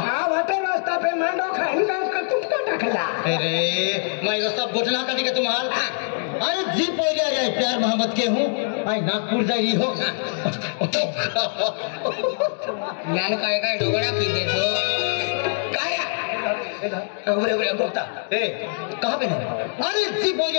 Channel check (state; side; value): silent; right; digital silence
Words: वाटे रास्ता पे मांडो खाइन का तुमका टकला अरे मैं रास्ता बोझला का दिखे तुम्हार अरे जी पोरिया रे प्यार मोहब्बत के हूं आई नागपुर जाई हो ज्ञान काय डोगड़ा की दे तो काया उबरे गोता ए कहां पे है अरे जी